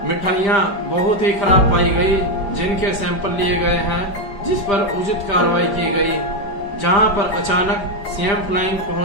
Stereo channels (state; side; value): late; right; 5.0 ms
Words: मिठाइयां बहुत ही खराब पाई गई जिनके सैंपल लिए गए हैं, जिस पर उचित कार्रवाई की गई। जहां पर अचानक सीएम फ्लाइंग